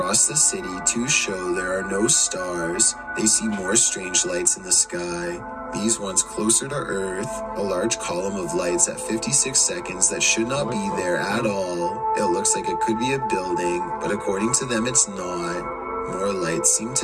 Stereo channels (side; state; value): both; identical; correlation 1.00